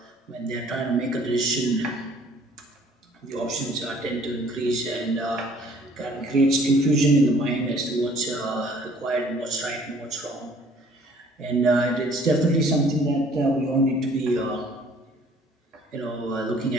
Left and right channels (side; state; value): both; normal; correlation 0.56